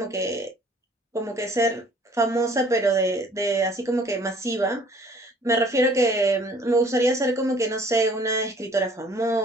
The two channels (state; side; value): normal; both; correlation 0.55